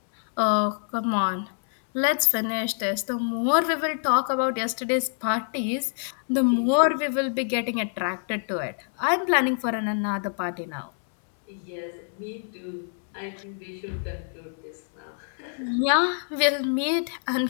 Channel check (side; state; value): right; silent; 61 dB below the other